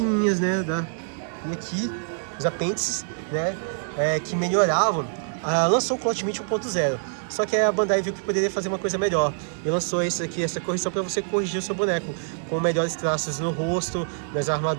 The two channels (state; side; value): silent; left; digital silence